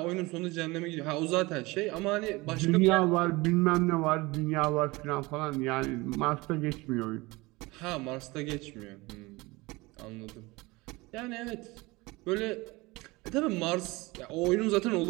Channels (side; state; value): left; quieter; 22.6 dB